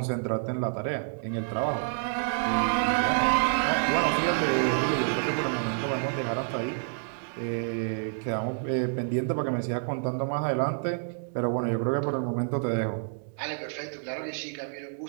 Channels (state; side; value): silent; left; digital silence